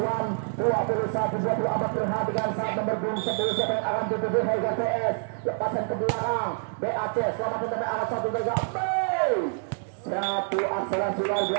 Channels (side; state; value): left; silent; digital silence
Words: 21 24 perhatikan saat nomor 10 siapa yang akan dituju Harga PS. Lepasan ke belakang BAC selamat sampai angkat 1 2 3. Satu akselerasi luar